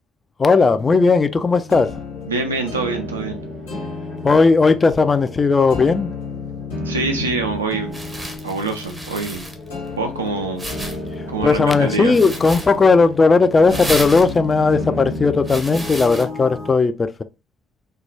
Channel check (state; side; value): quieter; right; 3.3 dB